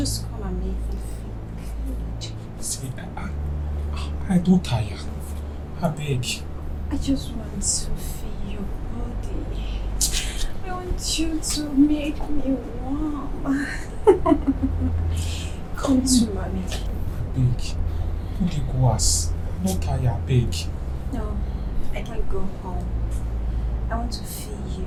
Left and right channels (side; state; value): both; identical; correlation 1.00